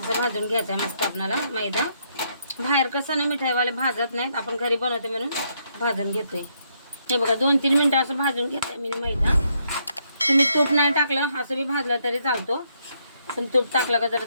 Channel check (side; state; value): both; inverted; correlation -0.75